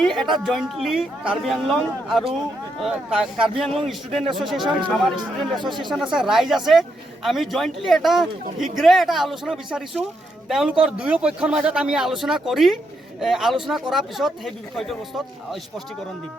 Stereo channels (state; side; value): normal; both; correlation 0.80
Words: এটা জইণ্টলি কাৰ্বি আংলং আৰু কাৰ্বি আংলং ষ্টুডেণ্ট এছ'চিয়েশ্যন আমাৰ ষ্টুডেণ্ট এছ'চিয়েশ্যন আছে ৰাইজ আছে আমি জইণ্টলি এটা শীঘ্ৰে এটা আলোচনা বিচাৰিছোঁ তেওঁলোকৰ দুয়ো পক্ষৰ মাজত আমি আলোচনা কৰাৰ পিছত সেই বিষয়টোৰ বস্তুত স্পষ্টীকৰণ দিম